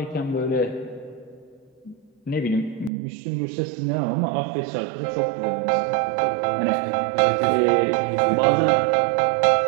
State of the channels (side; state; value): left; drops out; at 2.9 s